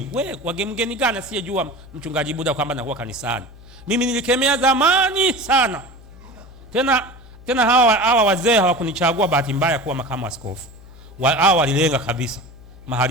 Mgeni gani asiyejua mchungaji Buda kwamba nakuwa kanisani? Mimi nilikemea zamani sana. Tena hawa wazee hawakunichagua bahati mbaya kuwa makamu askofu. Hawa walilenga kabisa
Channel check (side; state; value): right; noise; hum, 29 dB below the sound